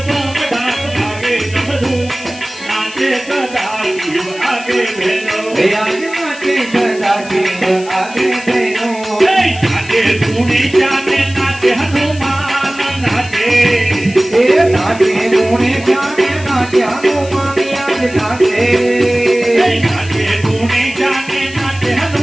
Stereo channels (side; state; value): left; noise; hiss, 18 dB below the sound